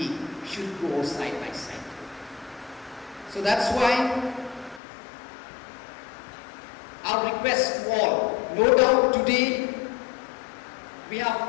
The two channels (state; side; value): drops out; right; at 4.8 s